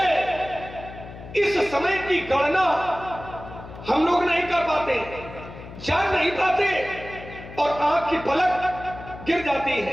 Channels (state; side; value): noise; left; hum, 14 dB below the sound